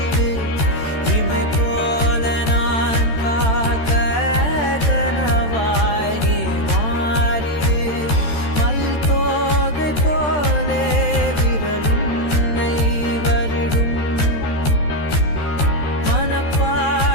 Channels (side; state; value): right; late; 13 ms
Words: இமை போல நான் காக்க கனவாய் நீ மாறிடு மயில் தோகை போலே விரலுன்னை வருடும்